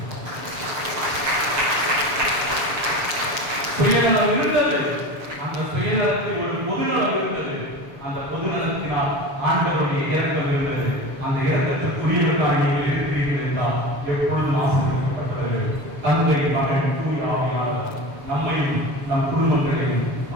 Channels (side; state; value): left; late; 7.1 ms